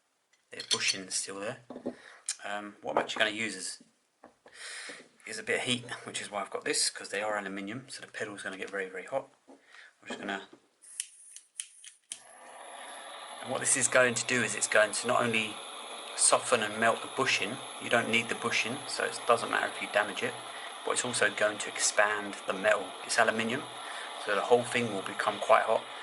bushing still there. What I'm actually going to use is a bit of heat, which is why I've got this, because they are aluminium, so the pedal is going to get very, very hot. I'm just going to, and what this is going to do is it's going to not only soften and melt the bushing, you don't need the bushing, so it doesn't matter if you damage it, but it's also going to expand the metal. It's aluminium, so the whole thing will become quite hot,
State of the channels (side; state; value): both; identical; correlation 1.00